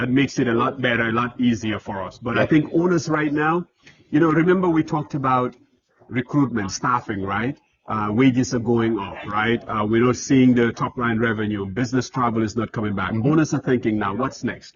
makes it a lot better, a lot easier for us. But I think owners right now, remember we talked about recruitment, staffing, right? Wages are going up, right? We're not seeing the top line revenue. Business travel is not coming back. Owners are thinking now, what's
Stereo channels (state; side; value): identical; both; correlation 1.00